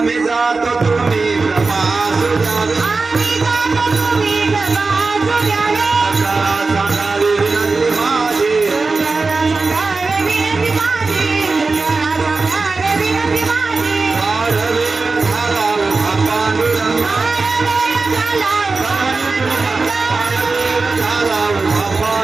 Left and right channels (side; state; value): left; quieter; 3.9 dB